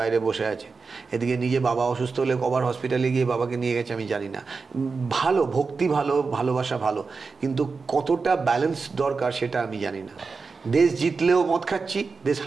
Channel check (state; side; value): quieter; left; 4.6 dB